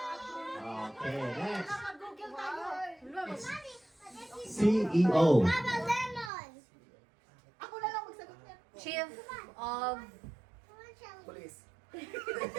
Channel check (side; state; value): left; drops out; at 6.3 s